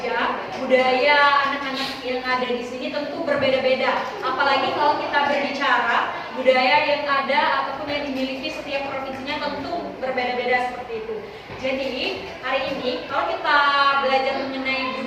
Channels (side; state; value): both; identical; correlation 1.00